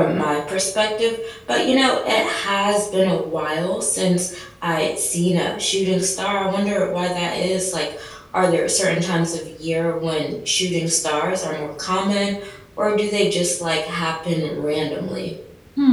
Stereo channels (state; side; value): identical; both; correlation 1.00